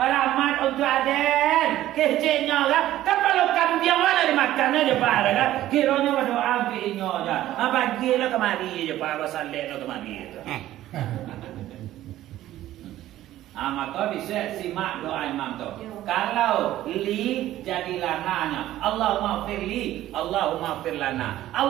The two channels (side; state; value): left; quieter; 14.0 dB